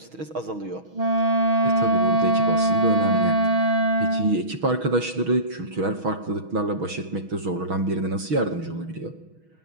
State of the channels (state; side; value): late; left; 6.2 ms